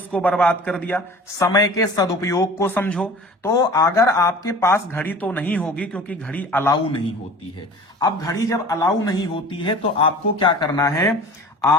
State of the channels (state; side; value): normal; both; correlation 0.41